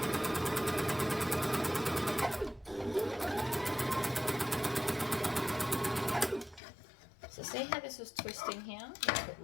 So see how this is twisting here? That's what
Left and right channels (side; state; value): right; drops out; at 6.6 s